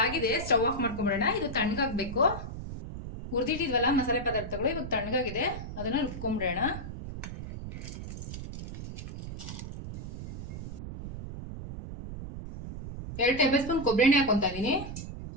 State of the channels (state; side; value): noise; right; rumble, 8 dB below the sound